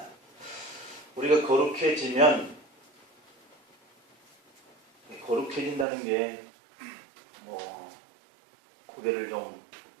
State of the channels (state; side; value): drops out; left; at 5.9 s